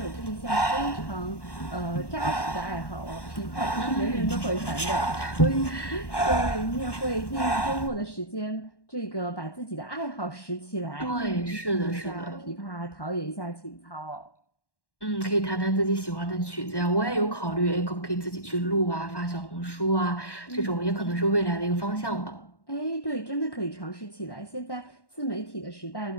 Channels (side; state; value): right; late; 1.1 ms